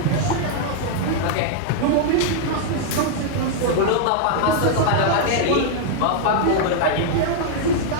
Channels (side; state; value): both; different; correlation 0.00